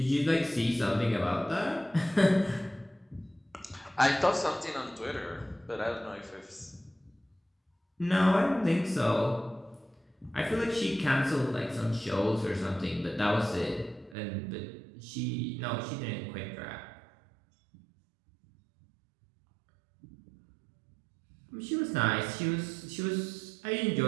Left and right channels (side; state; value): left; drops out; at 14.2 s